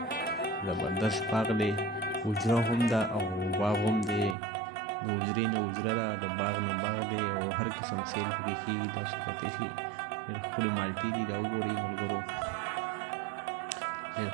زبردست باغ دی حجره هم ده او باغ هم دی د حجرې نه حجره ده د باغ نه باغ دی او هر قسم سیل پکې کېږي تاسو کتلی شئ ډېر ښکلې مالټې دي دا وګورئ ملګرو ډېر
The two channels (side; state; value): left; drops out; at 4.4 s